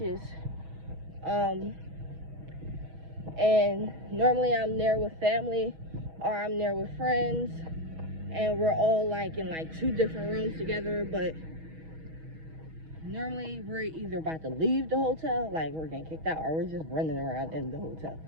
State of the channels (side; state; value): left; late; 6.2 ms